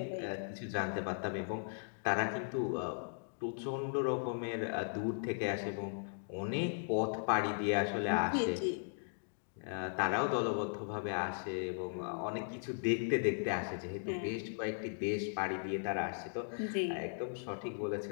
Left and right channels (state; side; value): silent; right; digital silence